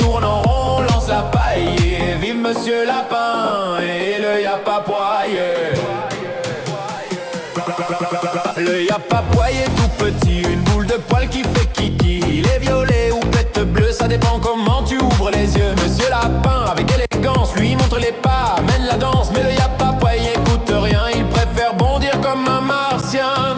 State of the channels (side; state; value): both; identical; correlation 1.00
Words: tourne en rond, on lance la paille. Et vive Monsieur Lapin et le y'a pas poiillé. Le y'a pas poiillé tout petit, une boule de poil qui fait kiki. Il est violet ou pète bleu, ça dépend comment tu ouvres les yeux. Monsieur Lapin avec élégance lui montre les pas, mène la danse. Mais le y'a pas poiillé écoute rien, il préfère bondir comme un martien.